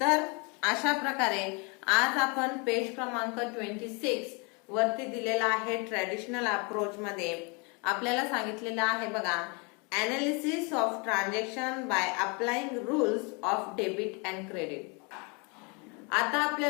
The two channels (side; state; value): right; quieter; 31.8 dB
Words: अशा प्रकारे आज आपण पेज क्रमांक 26 वरती दिलेला आहे. ट्रॅडिशनल अप्रोच मध्ये आपल्याला सांगितलेलं आहे बघा, analysis of transaction by applying rules of debit and credit. आता